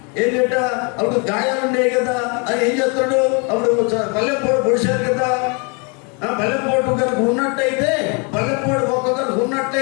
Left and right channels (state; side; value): quieter; right; 33.7 dB